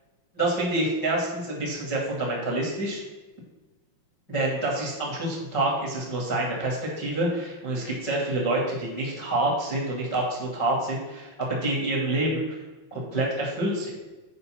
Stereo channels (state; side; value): late; right; 5.3 ms